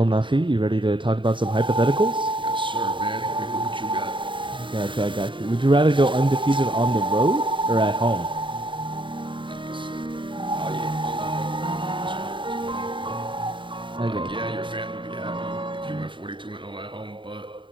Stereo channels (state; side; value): late; left; 0.24 ms